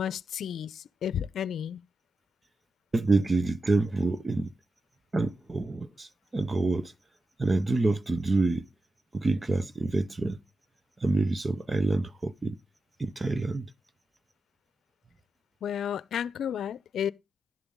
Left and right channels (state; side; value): normal; both; correlation 0.90